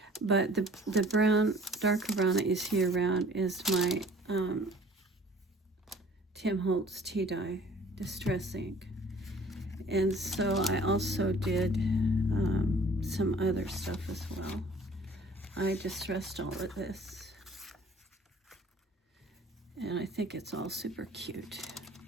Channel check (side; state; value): both; normal; correlation 0.52